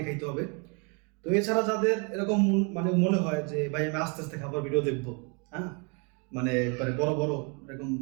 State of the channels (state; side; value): quieter; left; 34.4 dB